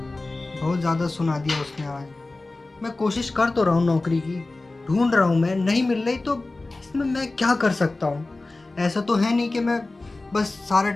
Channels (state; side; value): quieter; right; 3.1 dB